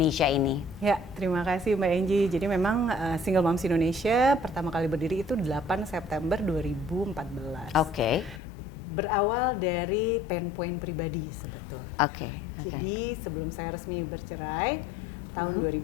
ini. Ya, terima kasih Mbak Angie. Jadi memang Single Moms Indonesia pertama kali berdiri itu 8 September 2014. Oke. Berawal dari pain point pribadi sebetulnya. Oke. Jadi sebelum saya resmi bercerai tahun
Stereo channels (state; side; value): drops out; right; at 8.4 s